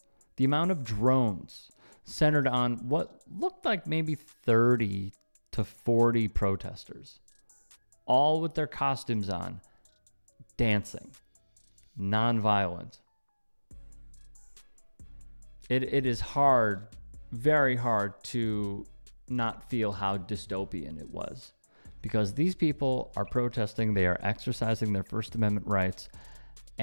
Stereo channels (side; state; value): both; inverted; correlation -1.00